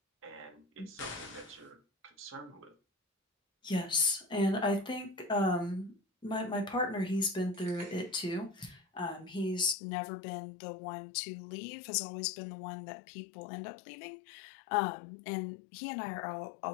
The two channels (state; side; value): drops out; right; at 9.8 s